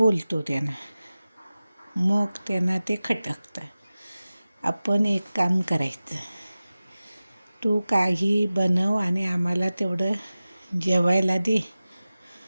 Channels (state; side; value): inverted; both; correlation -0.96